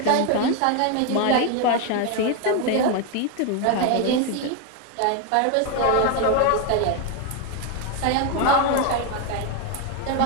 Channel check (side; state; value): both; different; correlation 0.02